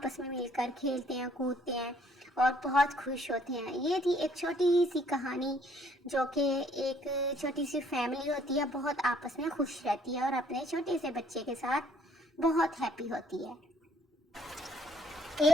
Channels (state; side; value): normal; both; correlation 0.63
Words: में मिलकर खेलते हैं, कूदते हैं और बहुत खुश होते हैं। ये थी एक छोटी सी कहानी, जो कि एक छोटी सी फैमिली होती है, बहुत आपस में खुश रहती है और अपने छोटे से बच्चे के साथ बहुत हैप्पी होती है।